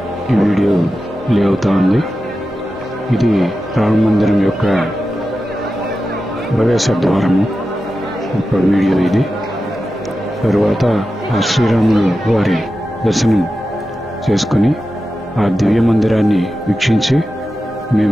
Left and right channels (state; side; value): normal; both; correlation 0.92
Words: ఈ వీడియో ప్లే అవుతా ఉంది. ఇది రామ మందిరం యొక్క ప్రవేశ ద్వారము ఒక వీడియో ఇది. తరువాత ఆ శ్రీరాములు వారి దర్శనం చేసుకుని ఆ దివ్య మందిరాన్ని వీక్షించి